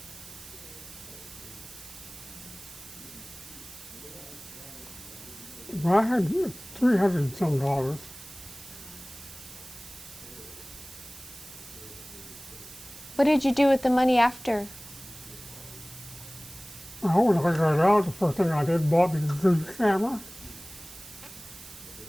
I had $300 and some dollars. What did you do with the money after? Well, when I got out, the first thing I did, bought me a good camera.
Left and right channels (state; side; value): noise; right; hiss, 17 dB below the sound